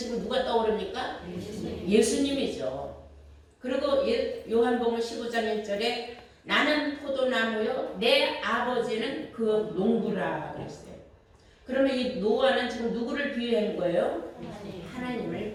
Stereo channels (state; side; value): identical; both; correlation 1.00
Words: 누가 떠오릅니까? 예수님이죠. 그리고 요한복음 15장 1절에 나는 포도나무요 내 아버지는 그 농부라 그랬어요. 그러면 이 노아는 지금 누구를 비유한 거예요?